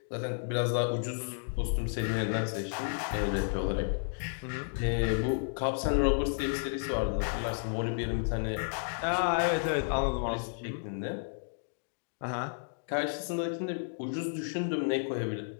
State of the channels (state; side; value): silent; right; digital silence